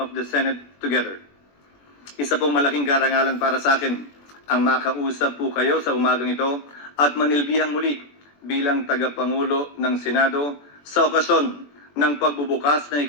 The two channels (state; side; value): late; right; 21 ms